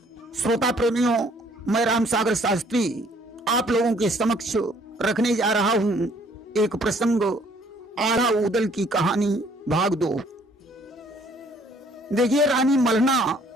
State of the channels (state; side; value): normal; both; correlation 0.61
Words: श्रोता प्रेमियों, मैं राम सागर शास्त्री आप लोगों के समक्ष रखने जा रहा हूं एक प्रसंग, आला उदल की कहानी भाग 2। देखिए, रानी मलना